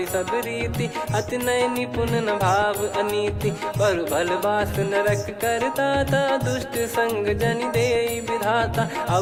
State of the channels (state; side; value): identical; both; correlation 1.00